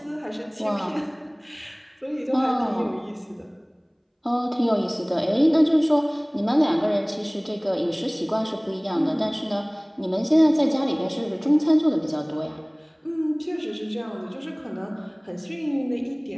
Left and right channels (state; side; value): identical; both; correlation 1.00